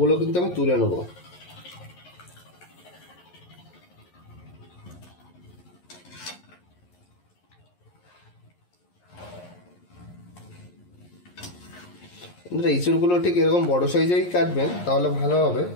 কিন্তু আমি তুলে নেবো। ইঁচড়গুলো ঠিক এরকম বড় সাইজেই কাটবেন, তাহলে ভালো হবে,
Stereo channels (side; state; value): right; late; 11 ms